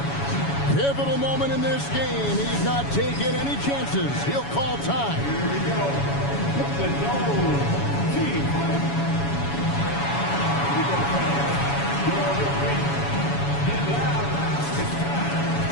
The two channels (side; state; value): right; late; 7.1 ms